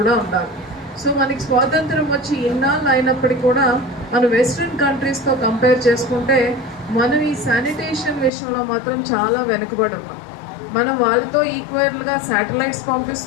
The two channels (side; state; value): right; drops out; at 8.3 s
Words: ఉండాలి. సో మనకి స్వాతంత్రం వచ్చి ఇన్నాళ్ళు అయినప్పటికీ కూడా మనం వెస్ట్రన్ కంట్రీస్తో కంపేర్ చేసుకుంటే మనం ఈ శానిటేషన్ విషయంలో మాత్రం చాలా వెనుకబడి ఉన్నాం. మనం వాళ్ళతో ఈక్వల్గా శాటిలైట్స్